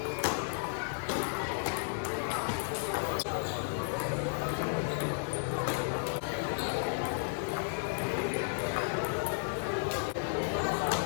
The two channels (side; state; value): right; silent; digital silence